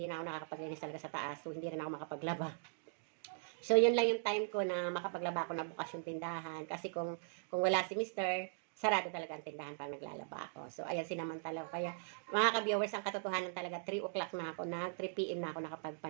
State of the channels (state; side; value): silent; left; digital silence